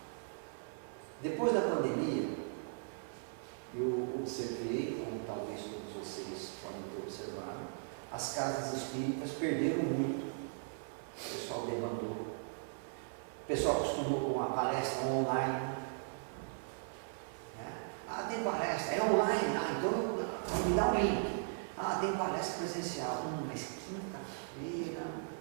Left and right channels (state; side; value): silent; left; 52 dB below the other